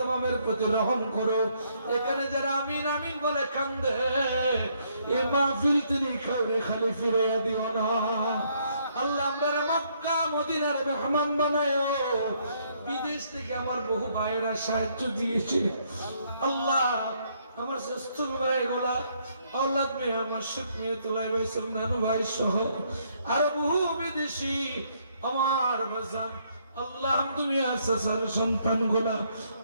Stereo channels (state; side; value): inverted; both; correlation -0.70